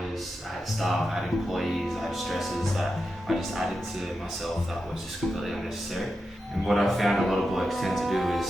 I had staff, I had employees, I had stresses that I just added to myself that was just completely unnecessary. And what I found a lot of blokes tend to do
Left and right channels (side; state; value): both; normal; correlation 0.89